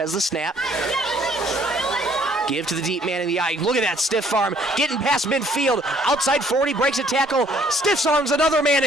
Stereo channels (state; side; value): normal; both; correlation 0.62